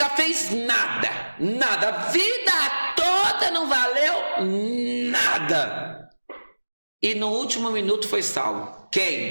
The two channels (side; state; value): both; inverted; correlation -1.00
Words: fez nada, a vida toda não valeu nada. E no último minuto foi salvo.